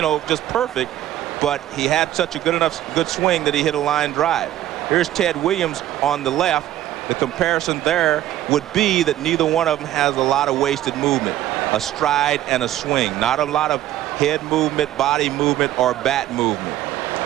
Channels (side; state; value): left; quieter; 13.2 dB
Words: just perfect, but he had such a good swing that he hit a line drive. Here's Ted Williams on the left. The comparison there would be that neither one of them has a lot of wasted movement, a stride and a swing, not a lot of head movement, body movement, or bat movement.